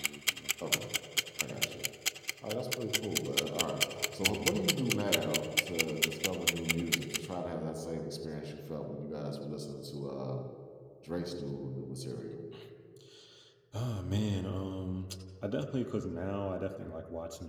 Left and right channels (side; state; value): both; identical; correlation 1.00